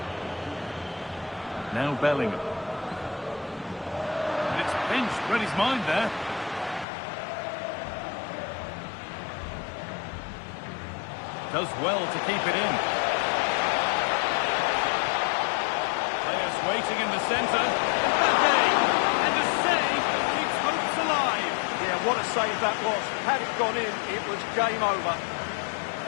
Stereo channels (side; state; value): right; drops out; at 6.9 s